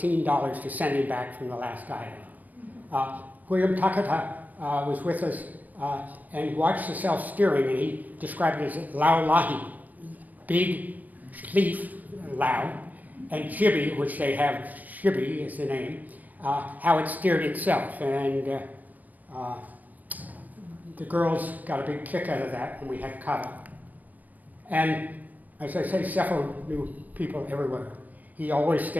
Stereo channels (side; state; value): left; late; 0.080 ms